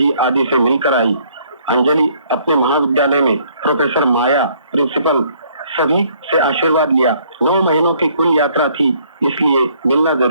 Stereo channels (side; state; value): both; inverted; correlation -0.63